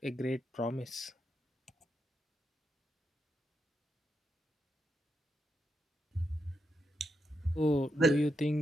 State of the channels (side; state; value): both; normal; correlation 0.83